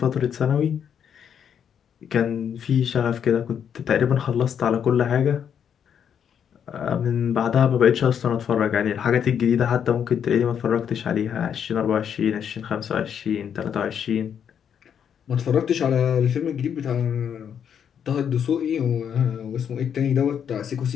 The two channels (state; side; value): quieter; right; 8.2 dB